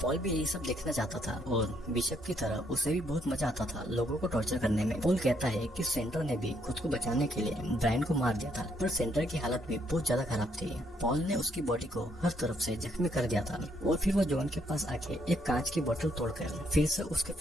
पॉल भी यही सब देखना चाहता था और बिशप की तरह उसे भी बहुत मजा आता था लोगों को टॉर्चर करने में। पॉल कहता है कि सेंटर ने भी खुद को बचाने के लिए ब्रायन को मार दिया था, पर सेंटर की हालत भी बहुत ज्यादा खराब थी। पॉल ने उसकी बॉडी को हर तरफ से जख्मी कर दिया था और फिर वो जॉन के पास आके एक कांच की बोतल तोड़कर फिर से उसके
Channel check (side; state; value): both; normal; correlation 0.72